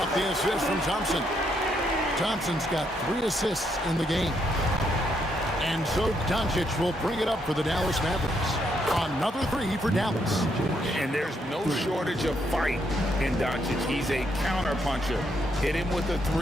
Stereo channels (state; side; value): normal; both; correlation 0.75